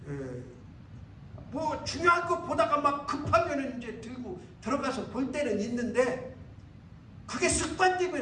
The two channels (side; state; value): both; identical; correlation 1.00